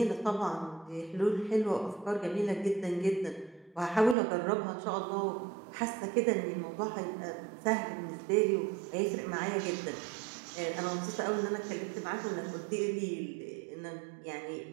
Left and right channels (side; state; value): left; drops out; at 4.2 s